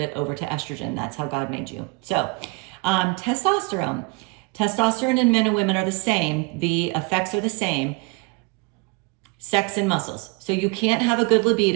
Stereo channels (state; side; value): quieter; left; 26.8 dB